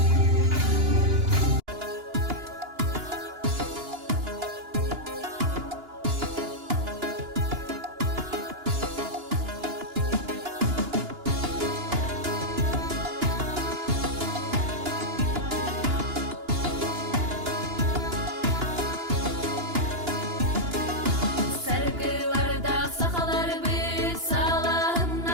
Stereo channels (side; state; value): left; late; 2.9 ms